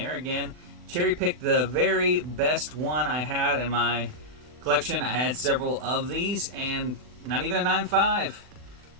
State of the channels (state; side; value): late; left; 40 ms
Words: Again, cherry picked the very best one I had in my collection. I had several of these, and not even a